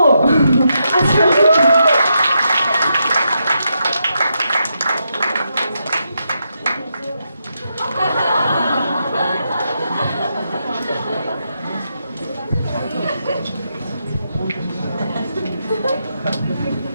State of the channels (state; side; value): inverted; both; correlation -0.83